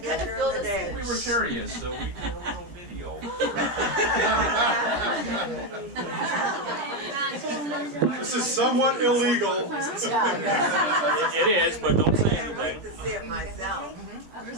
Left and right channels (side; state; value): left; late; 17 ms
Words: during the day. We were curious, so we did a little video. This is somewhat illegal. It is, but don't say I can't wait anything. to see it myself.